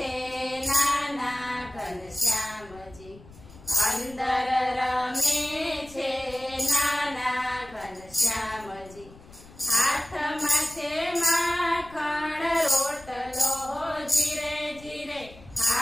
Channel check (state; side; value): noise; left; rumble, 21 dB below the sound